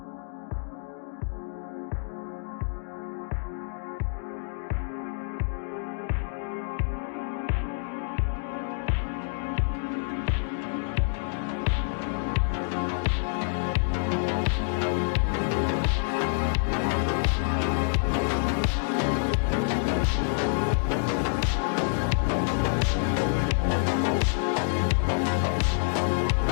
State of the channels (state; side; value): silent; right; digital silence